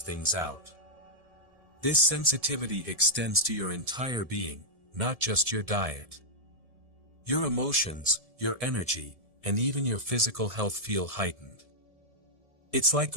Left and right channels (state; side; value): late; left; 1.7 ms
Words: out. This sensitivity extends to your entire being, not just your diet. Your emotions, your energy, and even your physical health feel heightened. It's like